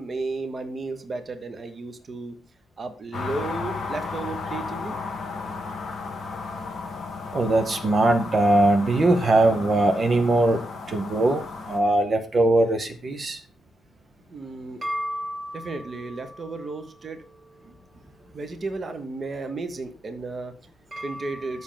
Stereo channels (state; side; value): normal; both; correlation 0.84